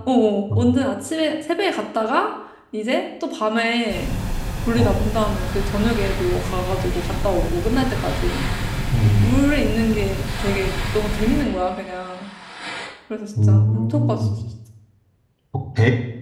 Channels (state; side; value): identical; both; correlation 1.00